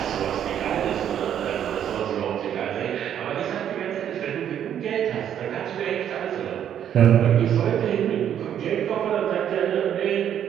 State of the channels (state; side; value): quieter; left; 9.7 dB